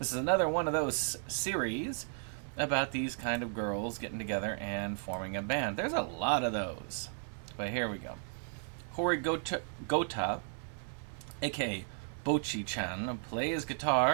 is another one of those series about these kind of girls getting together and forming a band. There's a lot of those. But here we go. Hori Gota, aka Bochi-chan, plays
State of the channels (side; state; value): left; silent; 55 dB below the other